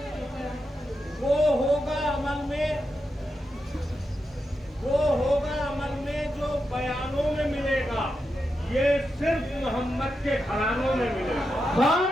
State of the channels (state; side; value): normal; both; correlation 0.87